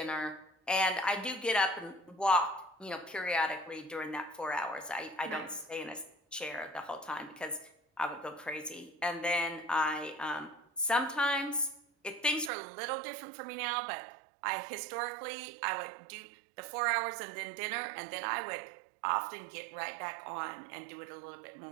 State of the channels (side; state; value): left; drops out; at 12.5 s